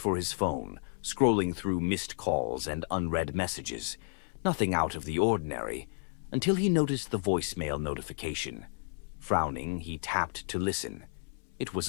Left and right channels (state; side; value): silent; right; 56 dB below the other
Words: his phone, scrolling through missed calls and unread messages. Nothing out of the ordinary, until he noticed the voicemail notification. Frowning, he tapped to listen. It was